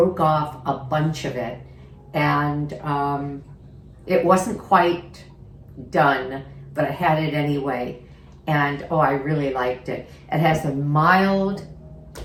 off a bunch of it, and it wasn't quite done, but I had it anyway. And oh, I really liked it. It has a mild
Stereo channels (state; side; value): identical; both; correlation 1.00